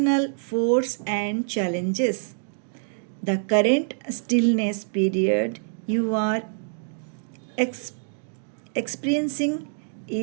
force and challenges. The current stillness period you are experiencing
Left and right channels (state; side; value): silent; left; digital silence